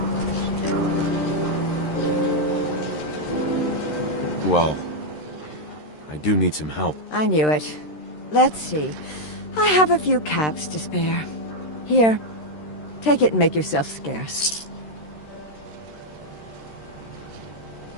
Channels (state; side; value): late; right; 13 ms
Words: Well, I do need some help. I knew it. Let's see. I have a few caps to spare. Here, take it and make yourself scarce.